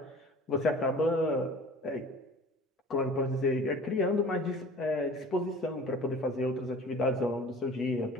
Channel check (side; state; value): both; normal; correlation 0.44